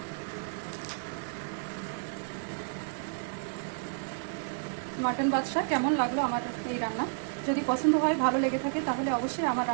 মাটন বাদশা কেমন লাগলো আমার এই রান্না? যদি পছন্দ হয়, ভালো লেগে থাকে, তাহলে অবশ্যই আমার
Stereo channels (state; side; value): silent; left; 57 dB below the other